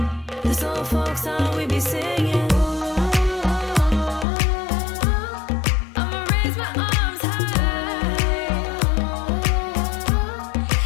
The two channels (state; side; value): drops out; right; at 4.2 s